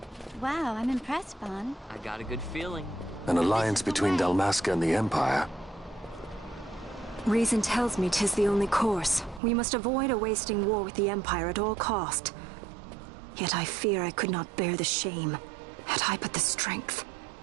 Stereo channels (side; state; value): left; drops out; at 9.4 s